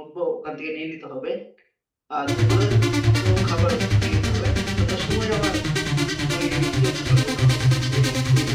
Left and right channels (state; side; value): identical; both; correlation 1.00